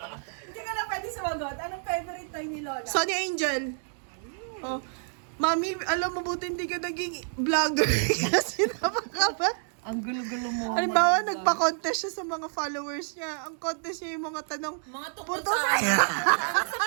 Hindi ka na pwede sumagot. Anong favorite toy ni Lola? Sonny Angel. Oh. Mami, alam mo buti hindi ka naging vlogger kasi napaka Ang gulo-gulo mo. Halimbawa, nagpa-contest siya sa mga followers niya. Ang contest niya yung mga tanong, Mga tungkol Puto sa ano? Tungkol sa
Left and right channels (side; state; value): left; silent; digital silence